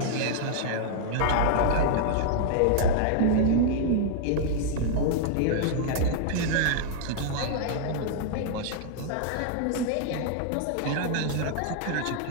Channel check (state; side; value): different; both; correlation -0.01